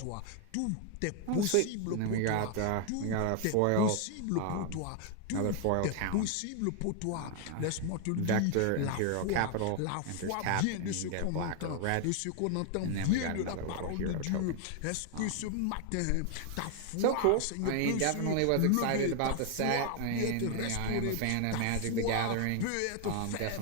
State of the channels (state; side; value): different; both; correlation 0.00